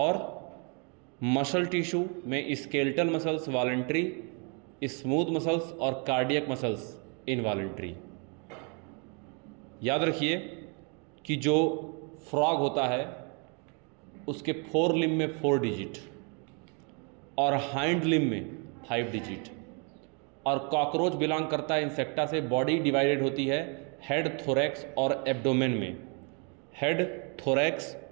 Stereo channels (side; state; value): left; quieter; 35.7 dB